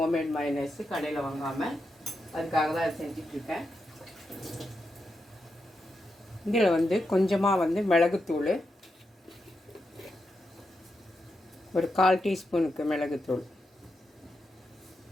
மயனைஸு, கடையில் வாங்காமல். அதுக்காக தான் அதை செஞ்சிட்ருக்கேன். இதில் வந்து கொஞ்சமாக வந்து மிளகுத்தூள், ஒரு 1/4 டீஸ்பூனுக்கு மிளகுத்தூள்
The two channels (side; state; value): both; normal; correlation 0.86